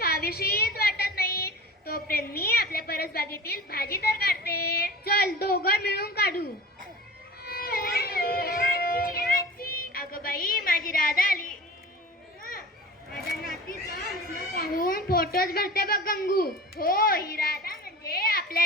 वाटत नाही. तोपर्यंत मी आपल्या परसबागेतील भाजी तर काढते. चल दोघं मिळून काढू. अगं बाई माझी राधा आली. माझ्या नातीचा हसणं पाहून फोटोच भरते बघ गंगू. हो ही राधा म्हणजे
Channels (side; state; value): both; normal; correlation 0.37